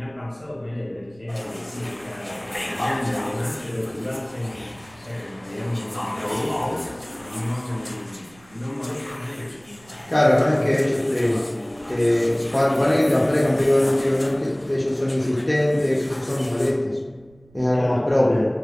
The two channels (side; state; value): right; noise; rumble, 28 dB below the sound